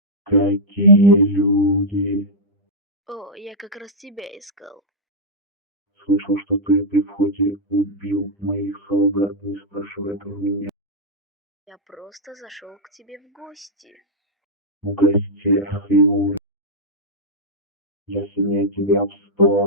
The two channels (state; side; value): normal; both; correlation -0.06